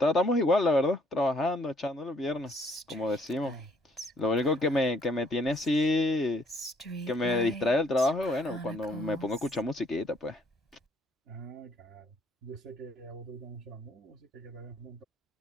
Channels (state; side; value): normal; both; correlation 0.65